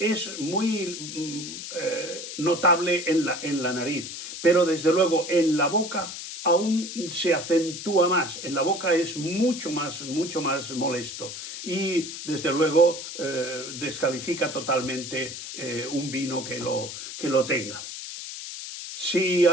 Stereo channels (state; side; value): noise; left; hiss, 9 dB below the sound